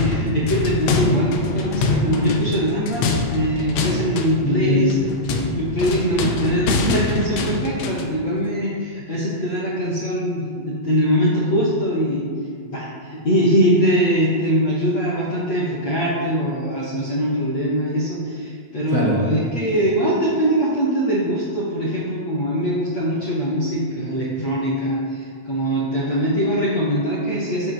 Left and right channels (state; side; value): late; right; 9.1 ms